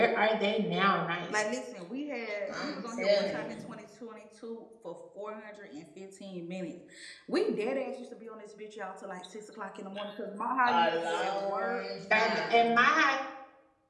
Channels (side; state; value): both; identical; correlation 1.00